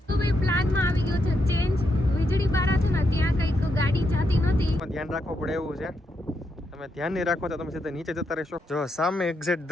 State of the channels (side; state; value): both; normal; correlation 0.81